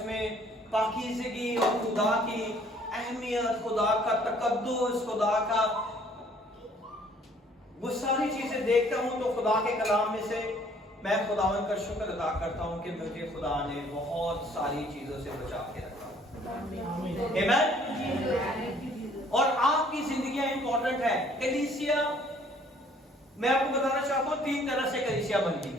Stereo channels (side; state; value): both; normal; correlation 0.59